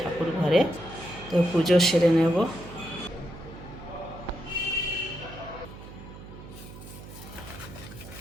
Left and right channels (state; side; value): noise; right; hum, 15 dB below the sound